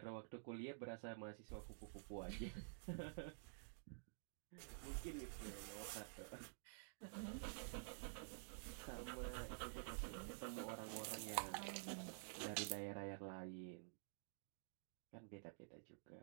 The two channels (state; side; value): silent; left; digital silence